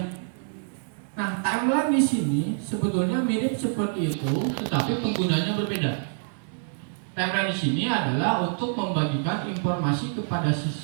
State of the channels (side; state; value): left; silent; digital silence